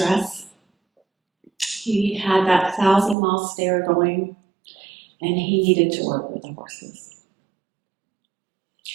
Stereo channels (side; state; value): left; drops out; at 3.2 s